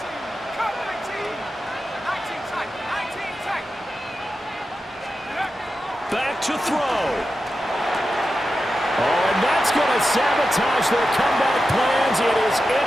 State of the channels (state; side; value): normal; both; correlation 0.91